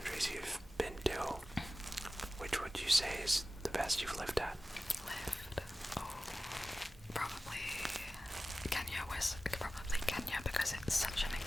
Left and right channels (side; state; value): both; normal; correlation 0.95